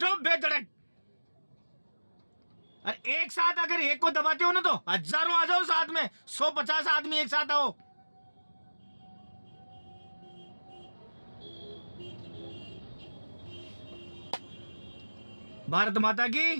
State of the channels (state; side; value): inverted; both; correlation -1.00